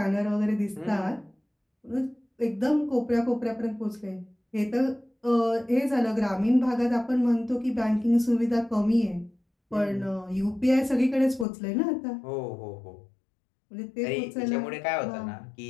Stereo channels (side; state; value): right; drops out; at 11.5 s